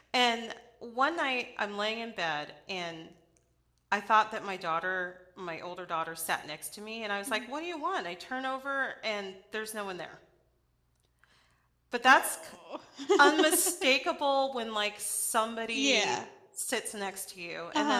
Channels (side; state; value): both; identical; correlation 1.00